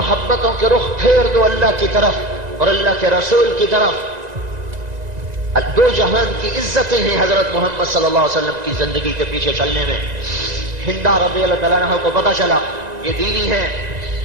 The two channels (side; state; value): left; late; 1.9 ms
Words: کے رخ پھیر دو اللہ کی طرف اور اللہ کے رسول کی طرف۔ دو جہان کی عزتیں ہیں حضرت محمد صلی اللہ علیہ وسلم کی زندگی کے پیچھے چلنے میں۔ ہندا رضی اللہ تعالیٰ عنہ کو پتا چلا یہ دینی ہے،